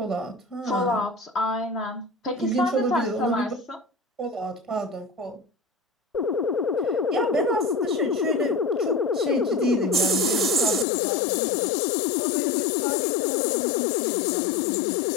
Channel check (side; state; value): right; drops out; at 10.9 s